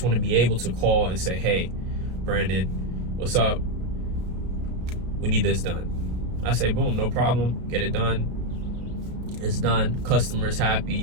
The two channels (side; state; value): left; late; 33 ms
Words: want to be able to call and say, hey, Brandon, what's up? We need this done. I say, boom, no problem, get it done. It's done, customer's